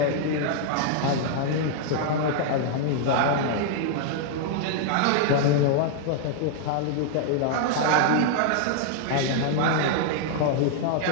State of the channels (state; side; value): different; both; correlation -0.01